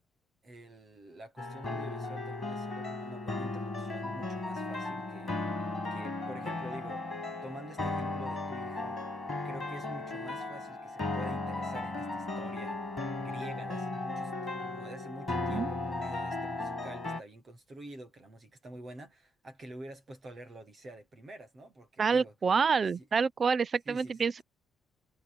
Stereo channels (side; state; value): both; normal; correlation 0.78